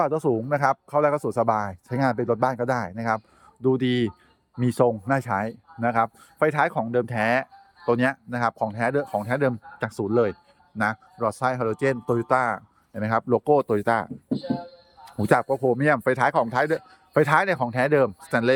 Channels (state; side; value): identical; both; correlation 1.00